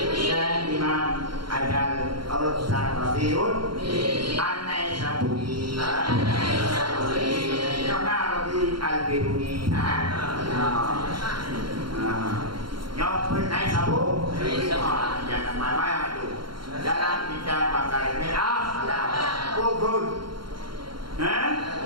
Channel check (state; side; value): late; left; 0.73 ms